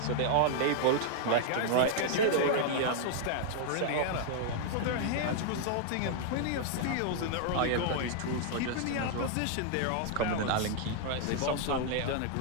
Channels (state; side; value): different; both; correlation -0.01